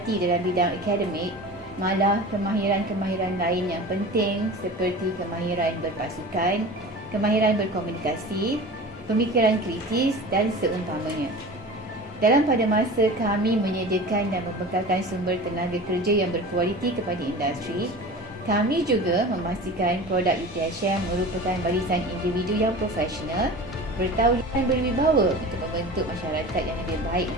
dalam bidang akademik, malah kemahiran-kemahiran lain yang penting seperti kemahiran berpasukan, kemahiran berkomunikasi, pemikiran kritis dan seumpamanya. Dalam pada masa kami menyediakan dan membekalkan sumber tenaga kerja yang berkualiti kepada industri, kami juga memastikan produk UTHM merupakan barisan individu yang profesional, bertauliah dan berwibawa untuk membentuk masyarakat yang lebih baik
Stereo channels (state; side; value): normal; both; correlation 0.36